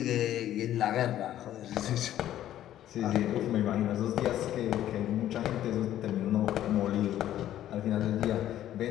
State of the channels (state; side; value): quieter; right; 12.3 dB